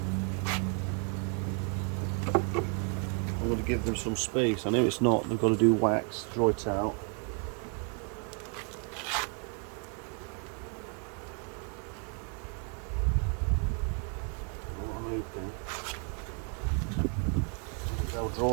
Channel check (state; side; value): quieter; left; 39.6 dB